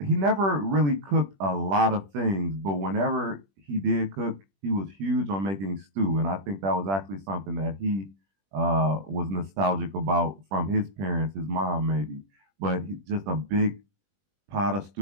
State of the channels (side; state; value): left; late; 21 ms